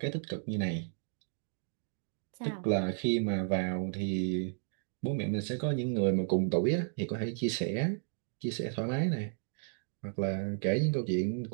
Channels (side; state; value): left; silent; digital silence